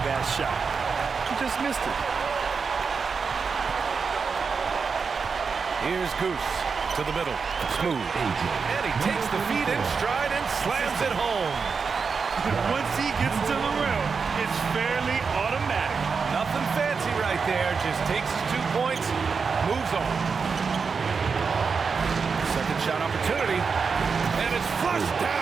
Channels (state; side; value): quieter; left; 5.4 dB